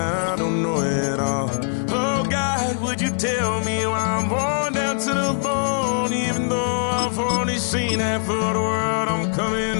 don't know at all. Oh God, would you tell me why I'm worn down to the bone? Even though I've only seen half of the world, I'm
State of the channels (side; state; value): right; silent; 64 dB below the other